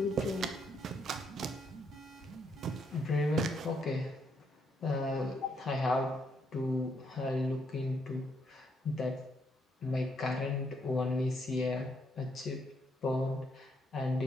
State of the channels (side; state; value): both; normal; correlation 0.75